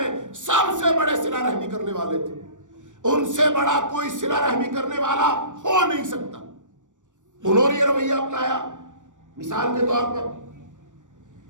سب سے بڑے صلہ رحمی کرنے والے تھے، ان سے بڑا کوئی صلہ رحمی کرنے والا ہو نہیں سکتا۔ انہوں نے یہ رویہ اپنایا۔ مثال کے طور پر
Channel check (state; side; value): late; left; 0.86 ms